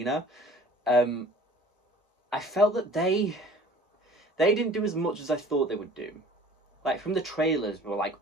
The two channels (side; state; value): both; normal; correlation 0.48